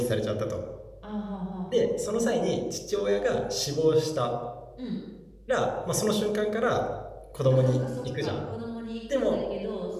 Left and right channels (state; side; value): identical; both; correlation 1.00